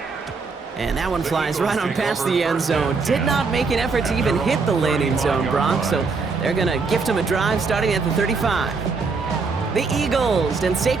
And that one flies right on past the end zone. Did not make an effort to even hit the landing zone, Brock, so they're going to gift him a drive starting at the 35. The Eagles and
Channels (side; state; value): left; quieter; 4.6 dB